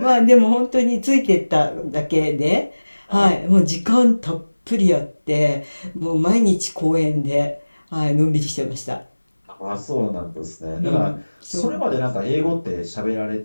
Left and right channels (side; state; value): both; inverted; correlation -1.00